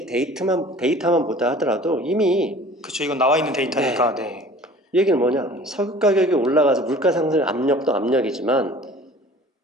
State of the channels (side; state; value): both; normal; correlation 0.46